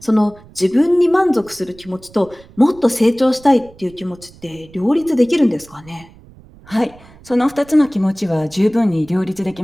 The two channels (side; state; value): right; noise; rumble, 24 dB below the sound